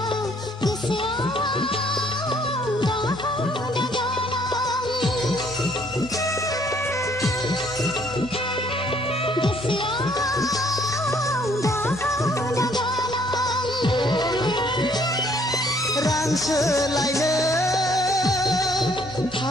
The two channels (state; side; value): normal; both; correlation 0.64